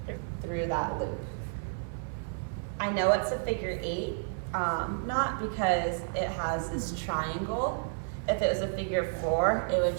through that loop. I know it's a figure 8, not because it has this triangle. If it was a figure 4, it would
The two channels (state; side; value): silent; left; 57 dB below the other